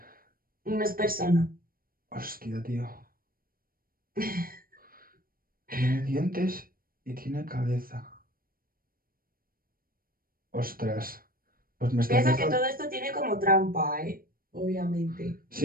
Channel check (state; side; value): late; left; 0.42 ms